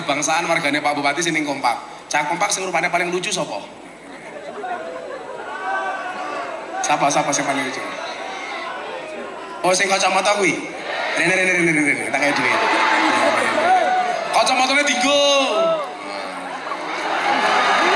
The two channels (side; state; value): both; identical; correlation 1.00